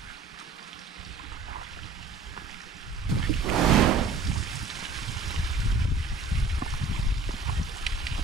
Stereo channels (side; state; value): left; quieter; 3.9 dB